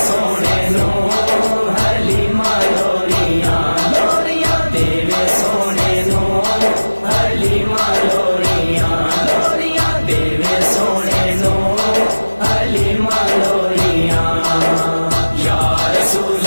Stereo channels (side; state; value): both; inverted; correlation -1.00